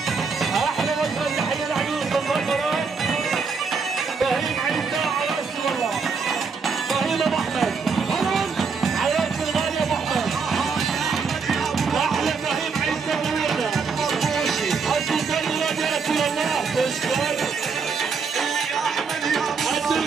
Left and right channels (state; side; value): quieter; left; 5.2 dB